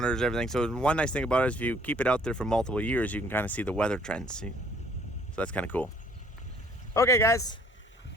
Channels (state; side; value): normal; both; correlation 0.60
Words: everything. So one nice thing about it is if you keep it out there for multiple years, you can kind of see the weather trends. See? So that's kind of cool. Okay guys,